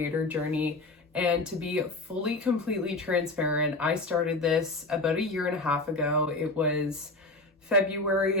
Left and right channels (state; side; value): quieter; right; 3.0 dB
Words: journey. And to be fully, completely transparent, I started this about 1.5 years ago. It was